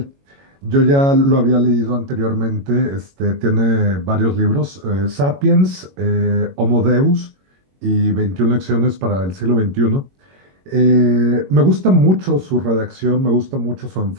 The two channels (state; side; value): late; left; 22 ms